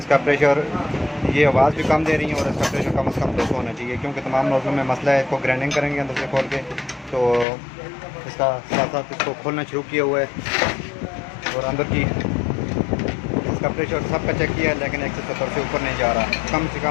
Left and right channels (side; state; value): right; drops out; at 7.5 s